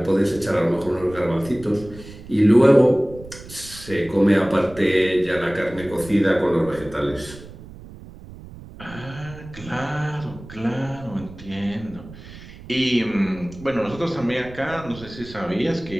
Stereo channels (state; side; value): noise; right; rumble, 17 dB below the sound